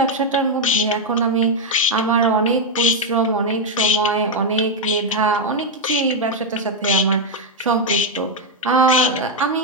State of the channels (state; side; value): normal; both; correlation 0.02